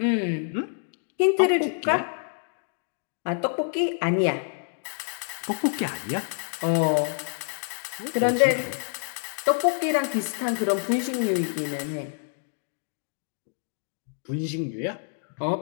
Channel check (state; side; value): silent; right; digital silence